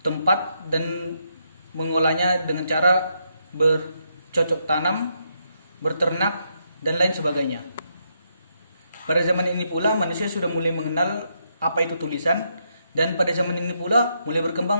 tempat dan mengolahnya dengan cara bercocok tanam, berternak, dan lain sebagainya. Pada zaman ini pula manusia sudah mulai mengenal apa itu tulisan, dan pada zaman ini pula mulai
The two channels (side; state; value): both; inverted; correlation -0.78